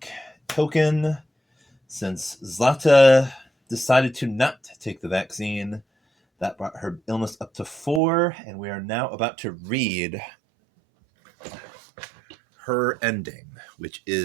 token since Zlata decided to not take the vaccine. That brought her illness up to 4, and we are now about to read her ending, which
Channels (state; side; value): drops out; left; at 8.0 s